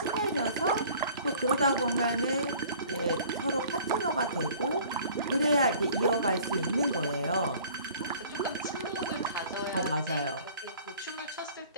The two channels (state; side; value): inverted; both; correlation -0.50